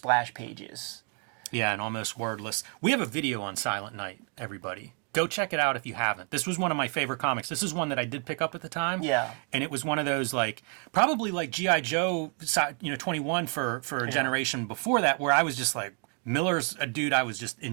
pages. Yeah, and almost wordless. We have a video on Silent Night, everybody. Go check it out if you haven't. This was one of my favorite comics. This is one that I did pick up at the time. Yeah. And it was one of those, like, probably like G.I. Joe, 21 for a generation before that, where I was just like, Miller's a dude I was just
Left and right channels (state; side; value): quieter; left; 38.0 dB